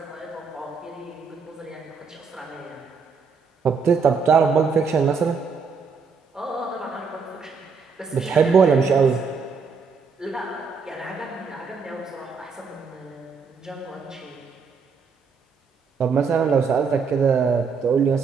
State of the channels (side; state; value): left; quieter; 5.3 dB